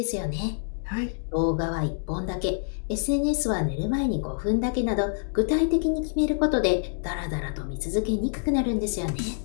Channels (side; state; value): right; silent; digital silence